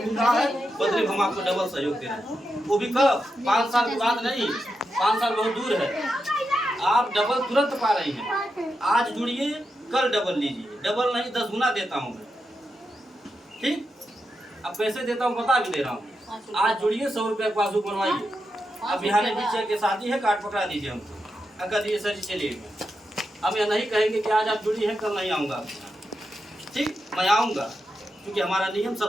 रहा है, बदले हम आपको डबल सहयोग दे रहे हैं। वो भी कब? 5 साल के बाद नहीं, 5 साल बहुत दूर है। आप डबल तुरंत पा रही हैं। आज जुड़िए, कल डबल लीजिए। डबल नहीं 10 गुना देता हूँ मैं। ठीक, अब पैसे देता हूँ, बता भी दे रहा हूँ। आज जुड़िए, 100 रुपया पासबुक बनवाइए। अब बिहाने पीछे के शादी है, कार्ड पकड़ा दीजिए हमको। अगर दिए सर जी चलिए, हम यह नहीं कहेंगे कि आज आप जुड़ी हैं कल नहीं आऊँगा। ठीक, मैं आऊँगा, क्योंकि हमारा नियम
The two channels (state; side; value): normal; both; correlation 0.87